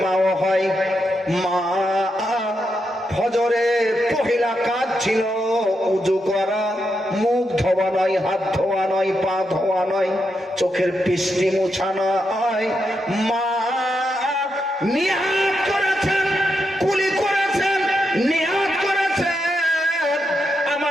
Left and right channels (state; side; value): normal; both; correlation 0.84